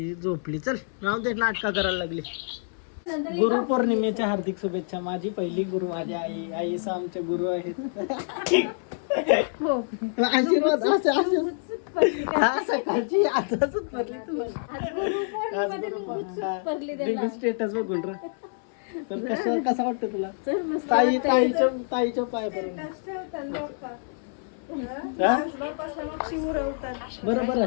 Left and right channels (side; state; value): right; silent; 60 dB below the other